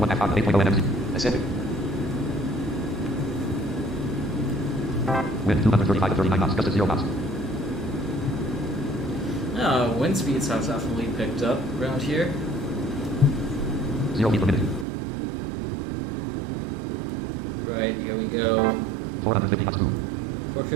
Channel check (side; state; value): left; drops out; at 14.9 s